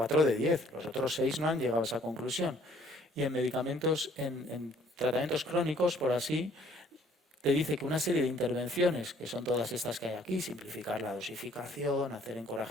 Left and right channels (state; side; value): normal; both; correlation 0.60